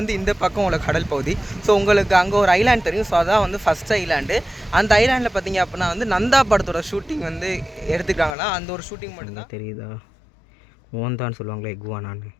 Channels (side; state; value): right; drops out; at 8.3 s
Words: இந்த பக்கம் உள்ள கடல் பகுதி. ஸோ உங்களுக்கு அங்கே ஒரு ஐலாண்ட் தெரியும். ஸோ அதான் வந்து ஃபஸ்ட் ஐலாண்டு. அந்த ஐலாண்டில் பார்த்திங்க அப்படின்னா வந்து நந்தா படத்தோட ஷூட்டிங் வந்து எடுத்துக்காங்கன்னா அந்த ஒரு ஷூட்டிங் மட்டும்தான் தெரியுதா. ஓந்தான்னு சொல்லுவாங்களே இகுவானான்னு.